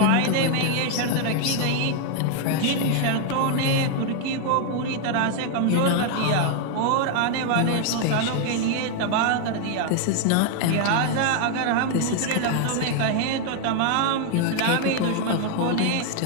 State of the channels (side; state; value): both; different; correlation 0.00